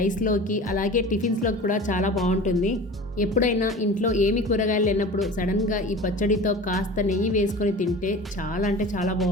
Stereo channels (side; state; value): both; normal; correlation 0.37